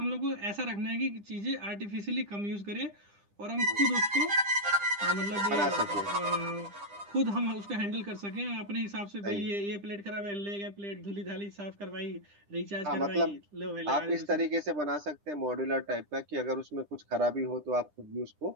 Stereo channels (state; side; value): late; left; 10 ms